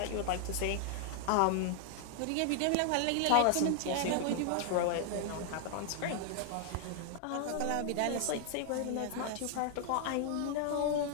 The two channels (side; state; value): both; different; correlation 0.00